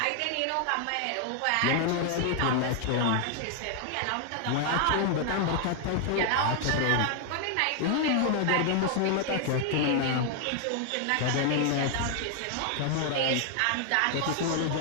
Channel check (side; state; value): both; different; correlation 0.00